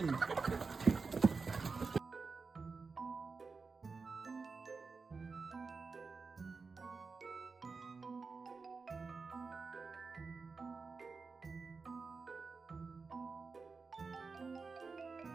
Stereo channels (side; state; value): left; quieter; 4.5 dB